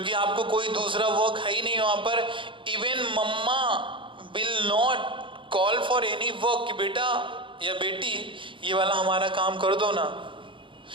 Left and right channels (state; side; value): late; left; 0.24 ms